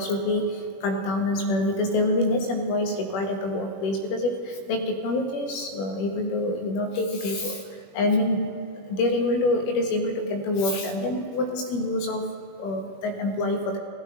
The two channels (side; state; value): right; late; 21 ms